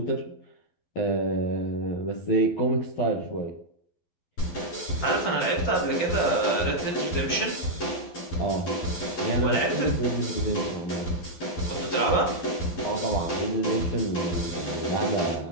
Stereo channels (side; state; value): right; late; 12 ms